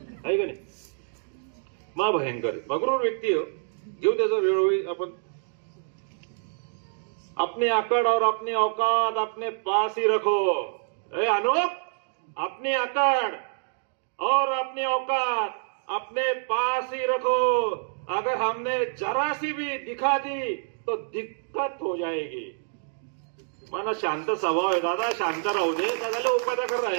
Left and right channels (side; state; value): left; silent; digital silence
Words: आहे का नाही. मा भयंकर मगरूर व्यक्ती घेऊ त्याचा वेळोवेळी आपण. अपनी अकड़ और अपनी औकात अपने पास ही रखो. अनुप, अपनी अकड़ और अपनी औकात अपने पास ही रखो. अगर हमने जरा सी भी दिखा दी तो दिक्कत हो जाएगी. मला शांत स्वभाव आहे दादा, शांत राहू दे. दादाला उपाध्याकर आहे